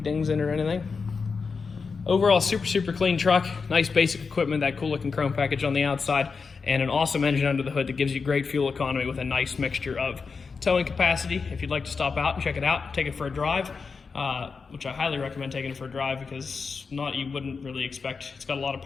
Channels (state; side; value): quieter; right; 5.0 dB